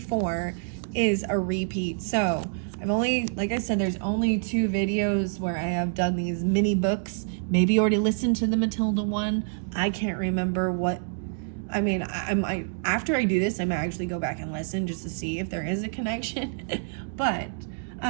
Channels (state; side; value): silent; left; digital silence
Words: is a repeat. So I've only, like I said, there's only 2 videos where I have done these mini books. Maybe you already listened to the Matilda one. I can't remember what. After I do this, I might actually go back and listen just to see if there is a connection. But